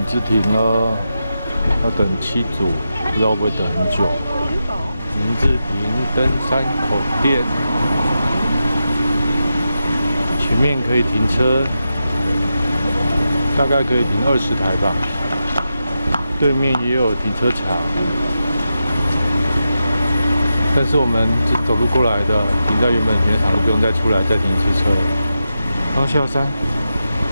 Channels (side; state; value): both; inverted; correlation -0.88